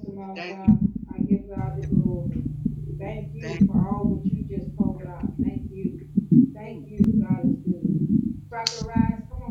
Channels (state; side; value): identical; both; correlation 1.00